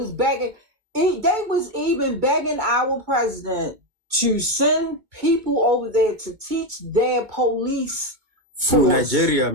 begging. They was even begging our president to send people over there to teach their police Who? force. Nigeria,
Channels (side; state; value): left; late; 2.2 ms